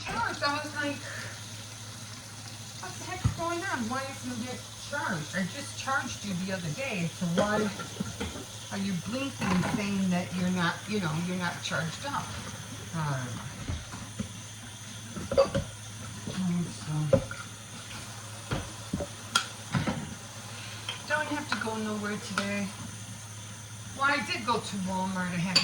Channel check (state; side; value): identical; both; correlation 1.00